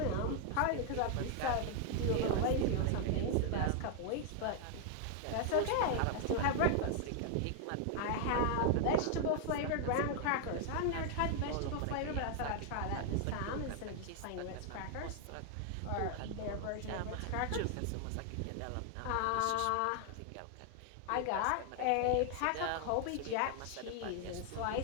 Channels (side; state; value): both; different; correlation 0.00